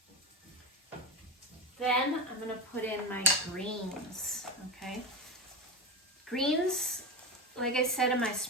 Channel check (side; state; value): both; normal; correlation 0.20